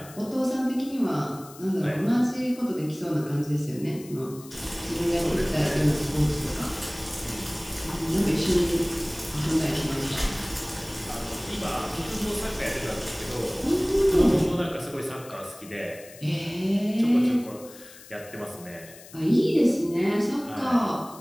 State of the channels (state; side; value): noise; left; hiss, 19 dB below the sound